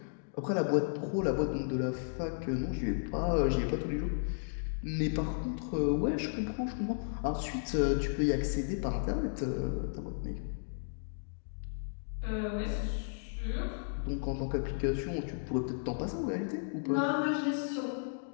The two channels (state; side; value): silent; right; digital silence